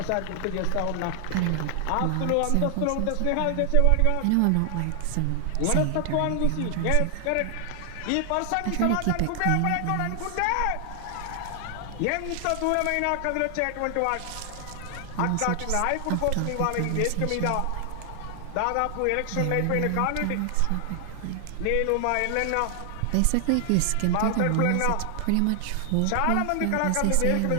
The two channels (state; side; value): different; both; correlation 0.00